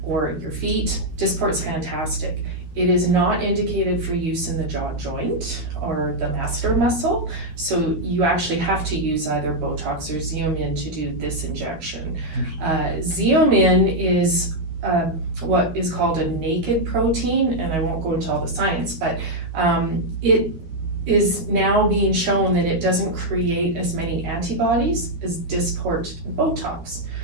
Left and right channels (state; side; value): late; left; 12 ms